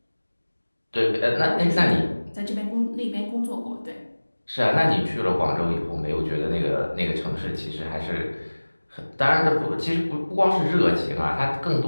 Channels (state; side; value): inverted; both; correlation -1.00